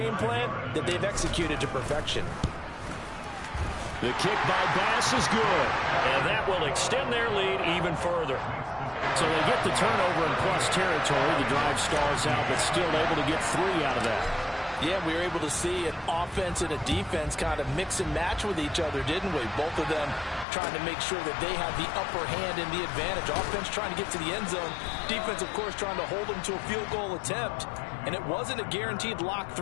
plan that they've executed to perfection. The kick by Bass is good, and that will extend their lead even further. So they get the turnover in plus territory. The drive stalls out, but still able to get 3 out of that. Yeah, we were able to see an offense and a defense kind of mix and match with each other, didn't we? Both of them trying to make sure that they have the upper hand and the advantage. Offense trying to get to the end zone. Defense, of course, trying to hold them to a field goal attempt. And it wasn't a guaranteed lock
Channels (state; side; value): drops out; right; at 20.5 s